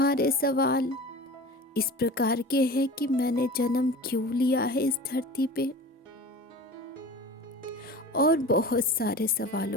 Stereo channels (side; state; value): both; normal; correlation 0.36